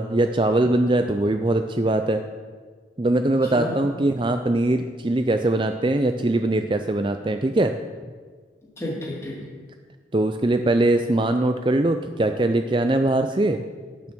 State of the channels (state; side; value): normal; both; correlation 0.72